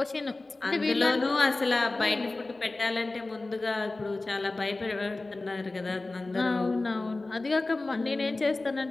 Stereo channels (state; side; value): quieter; right; 3.1 dB